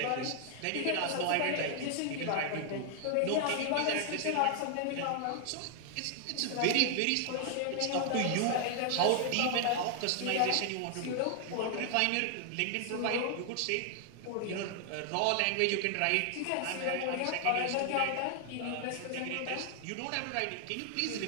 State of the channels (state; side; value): different; both; correlation 0.00